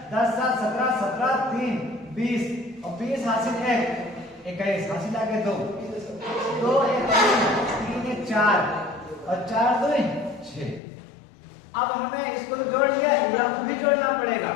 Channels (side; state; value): right; drops out; at 10.8 s